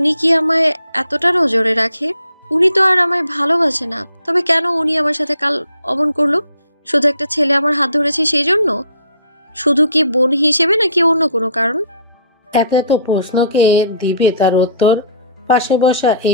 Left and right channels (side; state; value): both; inverted; correlation -0.56